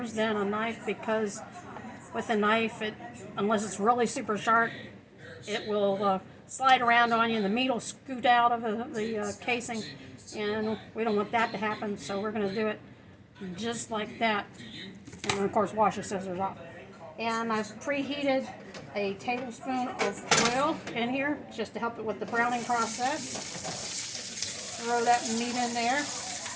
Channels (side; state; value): both; identical; correlation 1.00